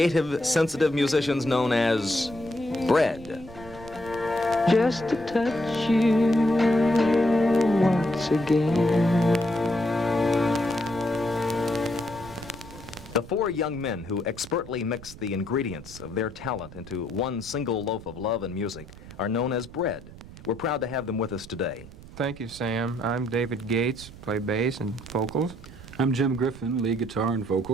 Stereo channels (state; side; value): noise; right; rumble, 17 dB below the sound